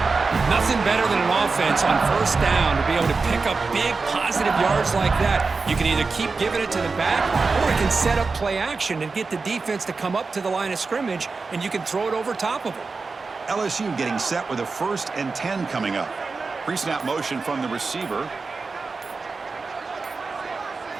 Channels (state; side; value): quieter; left; 4.3 dB